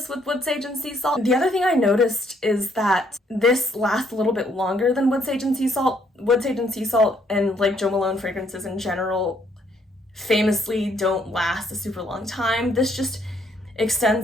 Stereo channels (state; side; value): normal; both; correlation 0.69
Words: with Wood Sage and Sea Salt. The other thing I noticed is that this lasts a little bit longer than Wood Sage and Sea Salt. Wood Sage and Sea Salt and like Jo Malone fragrances in general famously don't last a super long time. This just